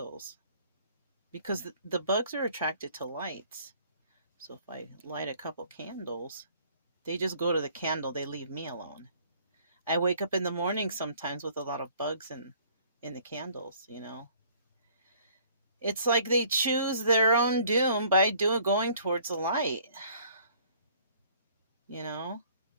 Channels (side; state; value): both; inverted; correlation -0.57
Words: Because the bugs are attracted to lights. So if I light a couple candles, they just go to the candle. They leave me alone. I wake up in the morning sometimes with a lot of bugs in the candles, It's like they choose their own doom by going towards the light.